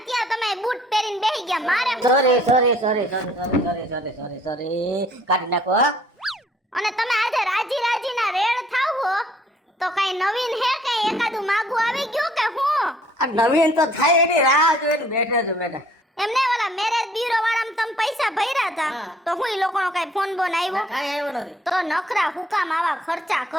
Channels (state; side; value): normal; both; correlation 0.59